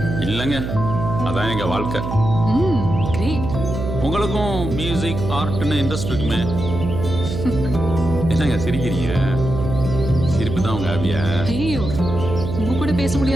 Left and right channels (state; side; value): noise; right; hum, 5 dB below the sound